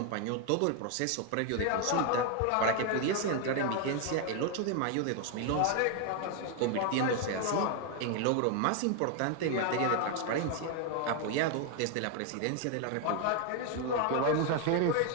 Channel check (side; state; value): both; different; correlation 0.01